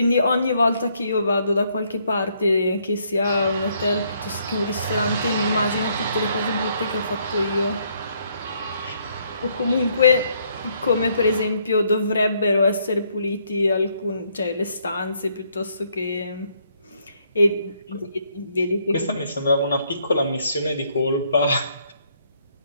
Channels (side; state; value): both; inverted; correlation -0.70